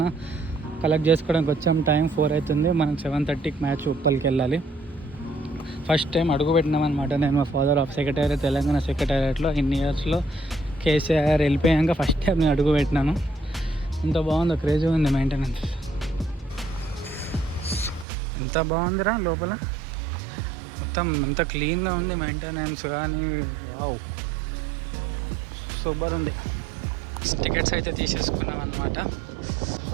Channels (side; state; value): left; drops out; at 18.1 s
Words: కలెక్ట్ చేసుకోవడానికి వచ్చాము. టైం 4 అవుతుంది. మనం 7:30కి మ్యాచ్ ఉప్పల్కి వెళ్ళాలి. ఫస్ట్ టైం అడుగు పెట్టినాం అనమాట. నేను మా ఫాదర్ ఆఫ్ సెక్రటేరియట్, తెలంగాణ సెక్రటేరియట్లో ఇన్ని ఇయర్స్లో కేసీఆర్ వెళ్ళిపోయాక ఫస్ట్ టైం నేను అడుగు పెట్టినాను. ఎంత బాగుందో, క్రేజీ ఉంది మెయింటెనెన్స్. ఎంత బాగుందిరా లోపల, మొత్తం ఎంత క్లీన్గా ఉంది మెయింటెనెన్స్ కానీ. వావ్, సూపర్ ఉంది. టికెట్స్ అయితే తీసేసుకున్నాం అన్నమాట. సో